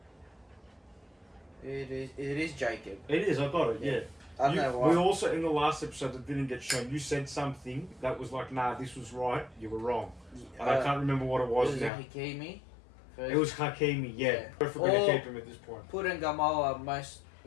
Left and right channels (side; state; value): right; drops out; at 11.9 s